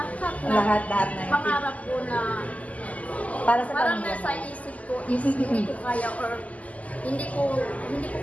pangarap ko na parang nasa isip ko is hindi ko kaya or hindi ko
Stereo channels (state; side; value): late; right; 0.072 ms